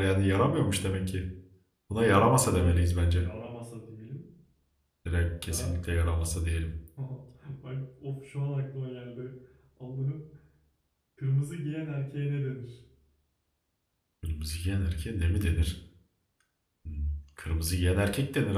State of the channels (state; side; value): identical; both; correlation 1.00